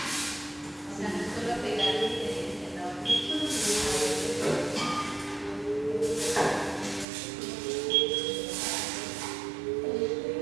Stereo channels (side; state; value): left; drops out; at 7.1 s